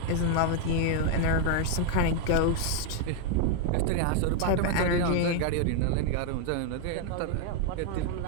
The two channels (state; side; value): different; both; correlation 0.00